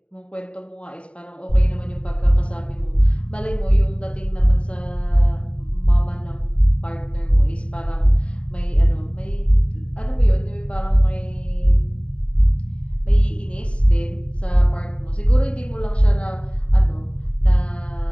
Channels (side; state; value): right; late; 0.060 ms